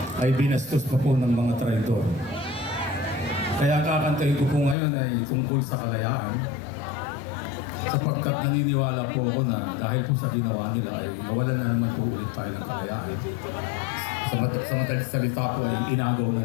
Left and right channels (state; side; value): drops out; right; at 4.8 s